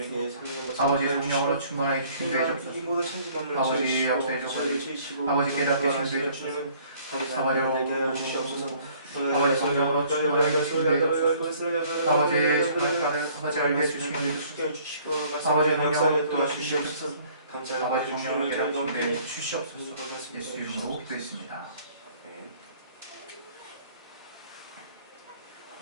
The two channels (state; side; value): inverted; both; correlation -0.57